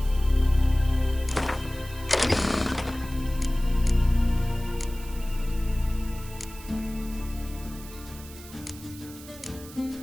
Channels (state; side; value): noise; right; hiss, 17 dB below the sound